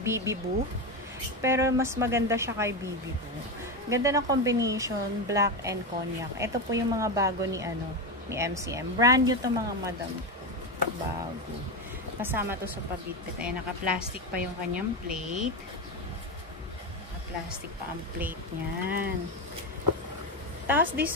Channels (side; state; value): both; normal; correlation 0.14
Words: BB Boo. Pero mas maganda siya kay BB Boo. Ganda ng combination, black and cognac. Ito po yung mga bago ni MCM. Brand new to mga madam. Bago. Kasama to sa pabitbit. Ayan, naka-plastic pa yung kanyang plate. Naka-plastic pa ang plate niyan. Tapos